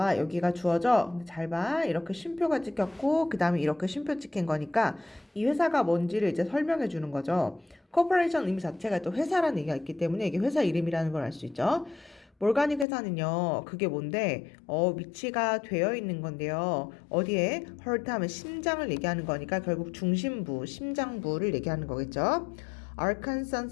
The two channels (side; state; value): right; drops out; at 12.9 s